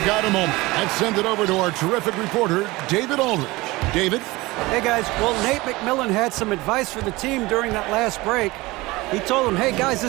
got a moment, let's send it over to our terrific reporter, David Aldridge. David? Hey, guys. Well, Nate McMillan had some advice for the team during that last break. He told them, hey, guys,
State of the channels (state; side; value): quieter; left; 21.2 dB